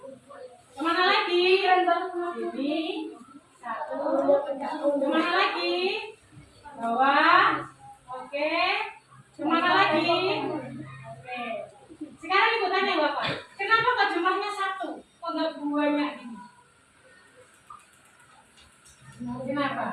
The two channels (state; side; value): identical; both; correlation 1.00